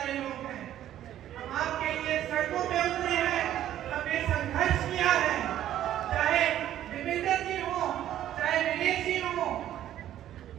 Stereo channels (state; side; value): quieter; left; 12.0 dB